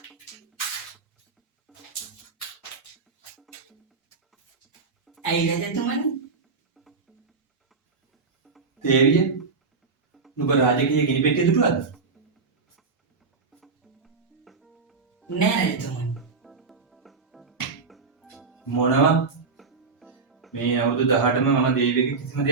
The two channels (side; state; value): left; quieter; 4.6 dB